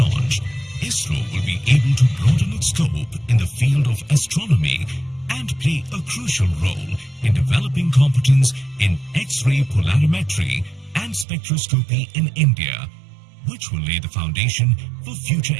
ISRO will be able to broaden its scope in the field of astronomy and play a crucial role in developing competence in X-ray polarimetry and spectroscopy in India, which will lay the foundation for future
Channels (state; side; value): drops out; left; at 11.2 s